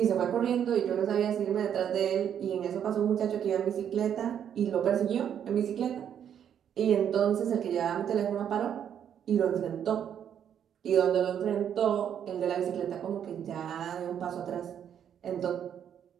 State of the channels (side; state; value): left; quieter; 9.0 dB